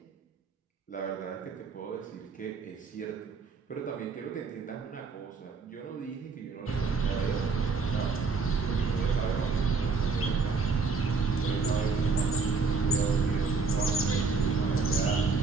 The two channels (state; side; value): quieter; left; 4.5 dB